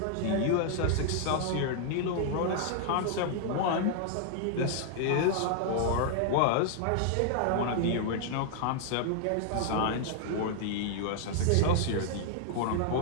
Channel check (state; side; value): different; both; correlation -0.01